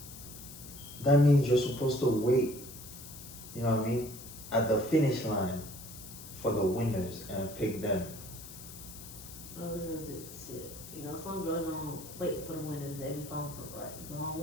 that? That means you're supposed to wait, you know what I mean, at the finish line for the winners and pick them. Oh, shit. Some girls don't wait for the winners. They be falling for the wrong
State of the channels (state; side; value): noise; left; hiss, 14 dB below the sound